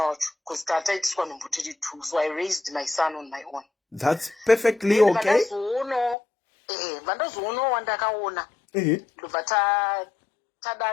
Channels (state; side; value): drops out; right; at 6.2 s